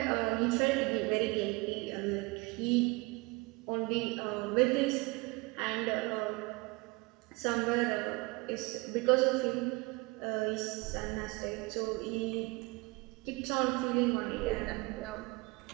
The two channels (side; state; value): left; quieter; 25.5 dB